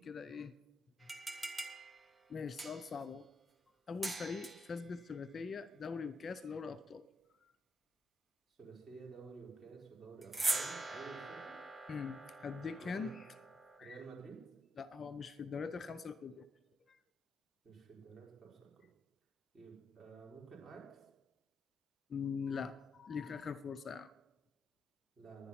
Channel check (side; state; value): both; normal; correlation 0.81